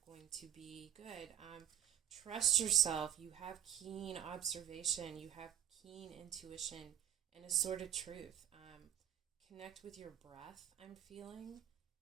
going to be good. Trust yourself. You have keen observation. You have keen intuition and a sort of truth. Connect with your breath, I'm feeling.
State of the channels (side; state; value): left; quieter; 11.2 dB